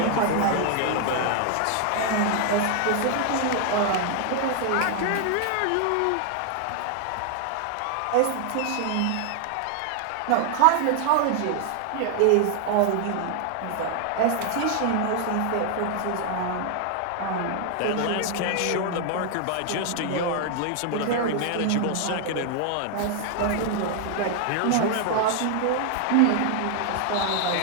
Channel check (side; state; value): both; different; correlation 0.00